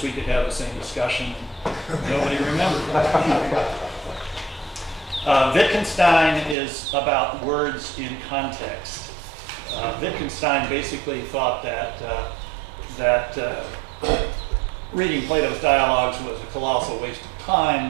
we could have the same discussion. Nobody remembered. Wittgenstein is about words in context. Wittgenstein basically thought that reading Plato's dialogues was a colossal waste of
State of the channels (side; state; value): left; drops out; at 6.6 s